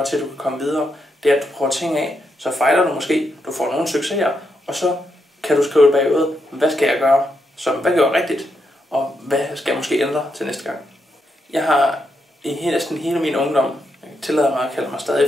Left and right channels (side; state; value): both; normal; correlation 0.82